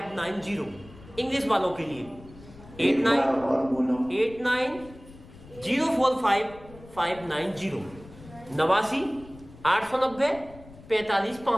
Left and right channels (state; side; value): noise; left; rumble, 20 dB below the sound